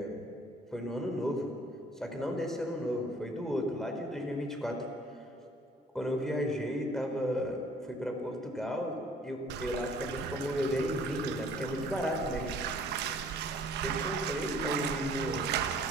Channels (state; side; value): normal; both; correlation 0.56